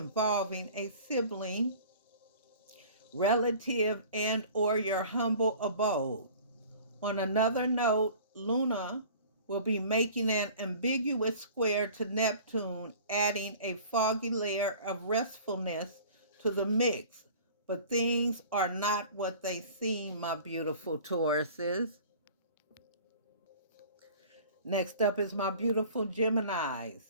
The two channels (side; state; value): both; inverted; correlation -0.45